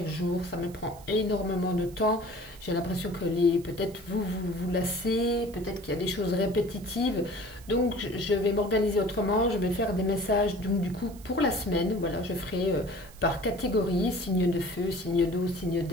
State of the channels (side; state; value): right; noise; hiss, 22 dB below the sound